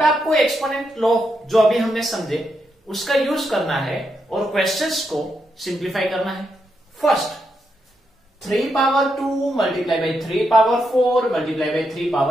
आपको एक्सपोनेंट लॉ जो अभी हमने समझे उसका यूज करना है और क्वेश्चंस को सिंप्लीफाई करना है। First, 3 power 2 multiply by 3 power 4 multiply by 3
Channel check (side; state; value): both; normal; correlation 0.82